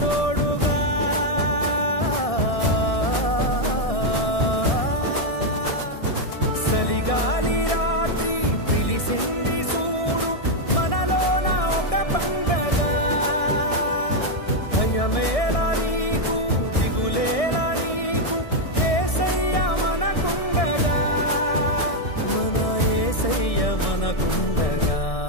తోడుగా. చలిగాలి రాత్రి పిలిసింది చూడు, మనలోన ఒక పండగ. భయమేలా నీకు, దిగులేలా నీకు, యేసయ్య మనకుండగా. మన యేసయ్య మనకుండగా.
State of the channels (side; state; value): right; late; 1.6 ms